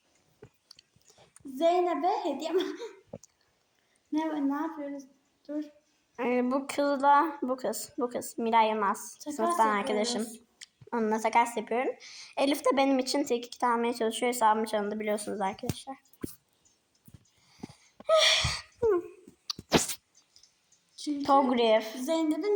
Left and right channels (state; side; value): identical; both; correlation 1.00